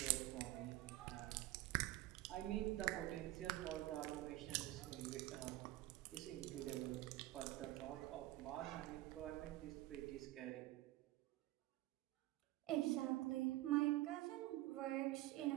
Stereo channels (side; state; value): left; quieter; 16.8 dB